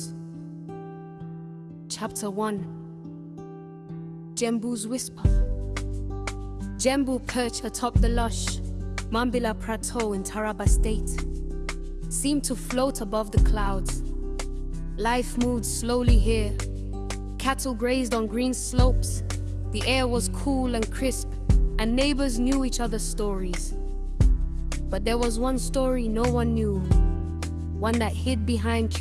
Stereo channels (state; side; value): identical; both; correlation 1.00